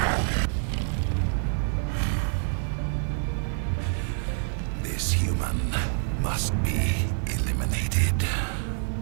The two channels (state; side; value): silent; left; 60 dB below the other